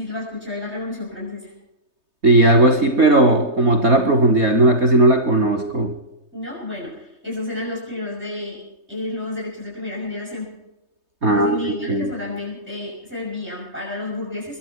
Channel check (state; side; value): late; left; 3.2 ms